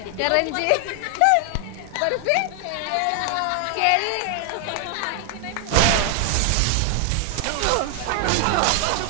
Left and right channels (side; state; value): both; different; correlation 0.00